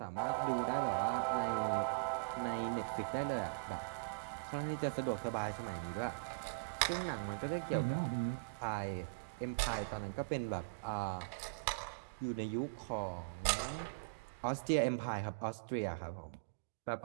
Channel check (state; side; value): quieter; left; 32.6 dB